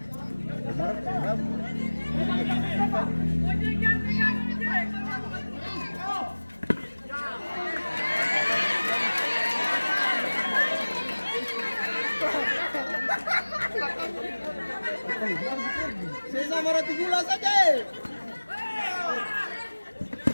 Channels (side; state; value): both; inverted; correlation -1.00